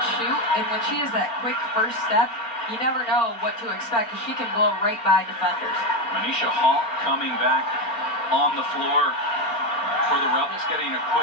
shoot, and when she has that quick first step, you never know what to expect because she can blow right by defenders. Manisha Hall coming back on the floor for the Rebels, getting a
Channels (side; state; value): right; late; 4.3 ms